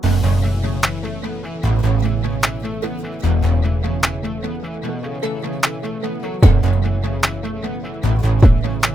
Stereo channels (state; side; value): normal; both; correlation 0.85